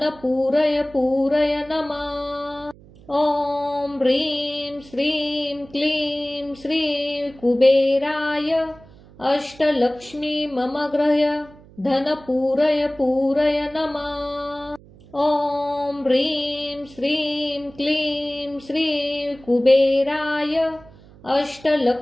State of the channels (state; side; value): noise; right; hum, 23 dB below the sound